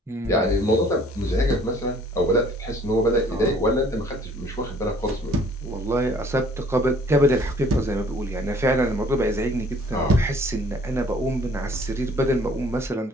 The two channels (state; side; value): normal; both; correlation 0.56